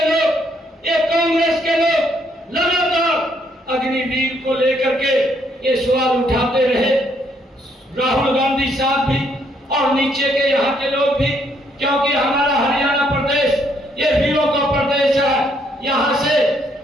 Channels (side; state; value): both; normal; correlation 0.70